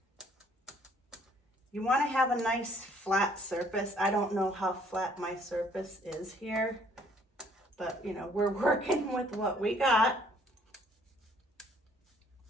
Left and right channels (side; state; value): both; normal; correlation 0.62